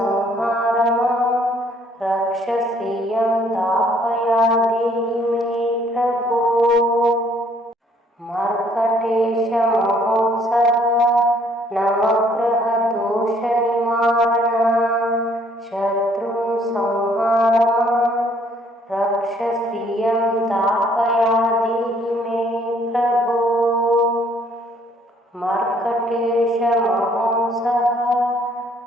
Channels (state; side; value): normal; both; correlation 0.63